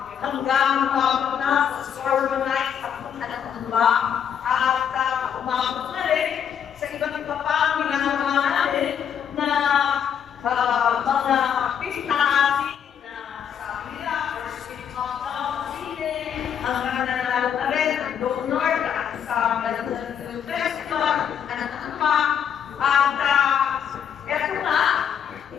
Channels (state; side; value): quieter; right; 8.4 dB